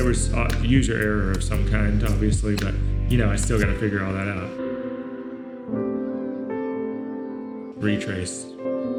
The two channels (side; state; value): both; identical; correlation 1.00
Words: was user error of some kind, obviously, but you know, I still got to figure all that out. Retrace.